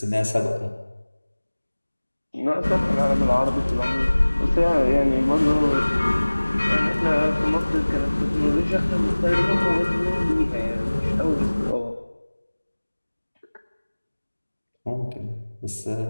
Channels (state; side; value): inverted; both; correlation -1.00